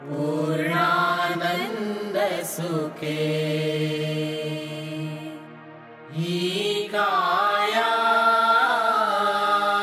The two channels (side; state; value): both; identical; correlation 1.00